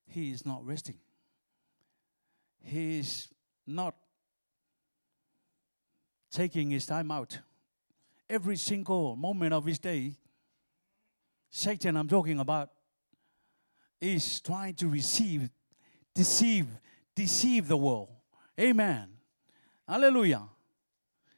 He is not resting. He is not taking his time out. Every single moment of his day, Satan I'm talking about, is trying to deceive the world. Amen. Hallelujah.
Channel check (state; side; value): inverted; both; correlation -1.00